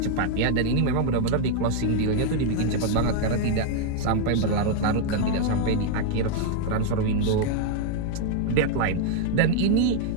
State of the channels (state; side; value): different; both; correlation 0.00